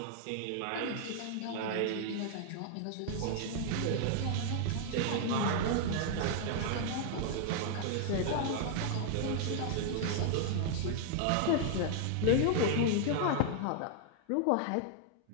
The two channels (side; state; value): both; different; correlation -0.01